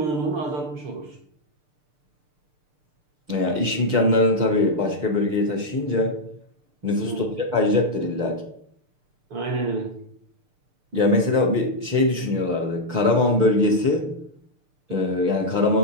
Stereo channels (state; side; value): late; left; 6.7 ms